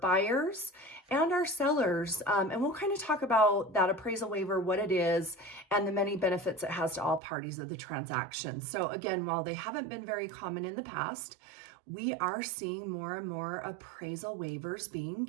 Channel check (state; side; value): drops out; left; at 7.2 s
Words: buyers and our sellers. And we'll kind of talk about that appraisal waiver, what it is, and the many benefits it has to all parties of the transaction. So again, while they haven't been very common in the past, we are seeing more and more appraisal waivers being